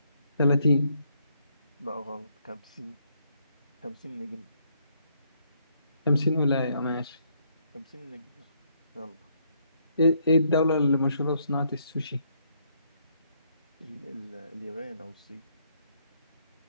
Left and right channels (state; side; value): inverted; both; correlation -0.72